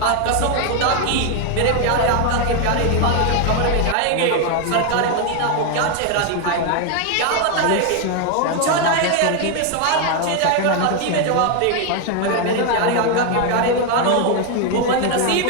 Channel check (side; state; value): both; different; correlation 0.01